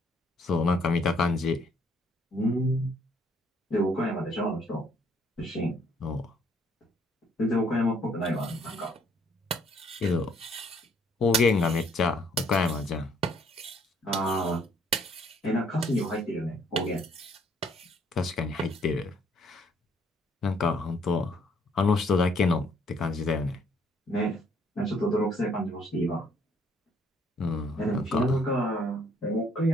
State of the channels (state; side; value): normal; both; correlation 0.65